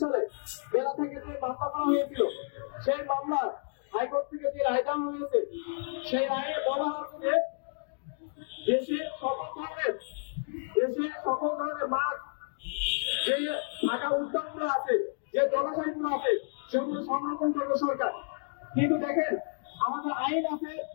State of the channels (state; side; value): silent; right; digital silence